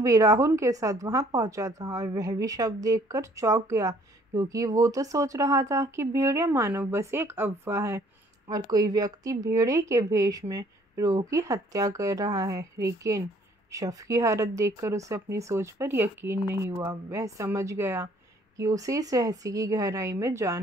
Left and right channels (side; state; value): both; normal; correlation 0.60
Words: राहुल के साथ वहां पहुंचा था और वह भी शव देखकर चौंक गया, क्योंकि वो तो सोच रहा था कि भेड़िया मानव बस एक अफवाह है और कोई व्यक्ति भेड़िए के भेष में रोह की हत्या कर रहा है। लेकिन शव की हालत देखकर उसे अपनी सोच पर यकीन नहीं हुआ। वह समझ गया कि उसे इस रहस्य की गहराई में